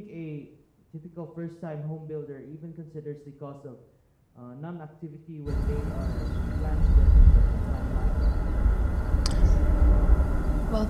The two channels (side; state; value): both; identical; correlation 1.00